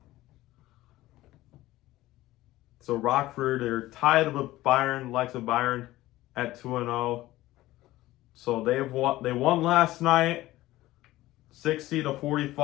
Rockford, they're tied with Byron, likes of Byron, at 2-0. So they won last night,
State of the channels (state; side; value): quieter; right; 16.8 dB